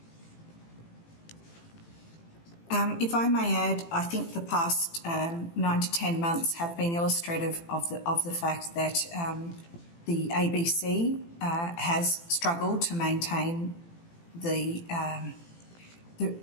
If I may add, I think the past 9 to 10 months have been illustrative of the fact that the ABC has struggled to maintain the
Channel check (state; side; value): late; right; 18 ms